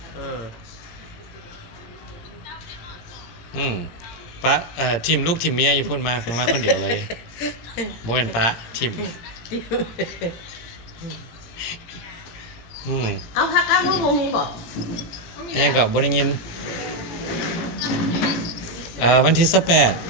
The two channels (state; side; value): late; right; 17 ms